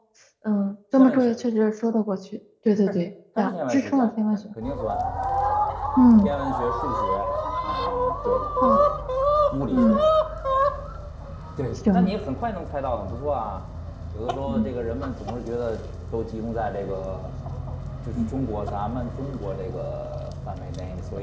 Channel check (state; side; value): identical; both; correlation 1.00